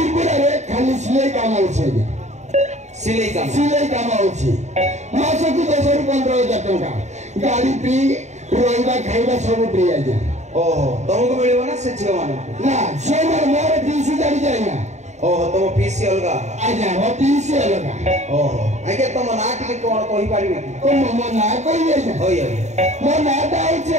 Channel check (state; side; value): late; left; 0.33 ms